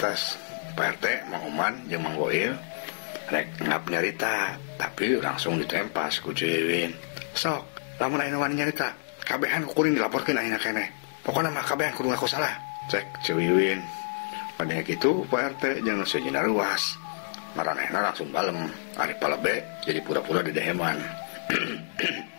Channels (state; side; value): silent; right; 59 dB below the other